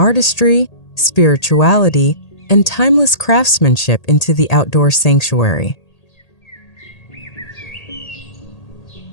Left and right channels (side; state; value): right; late; 1.8 ms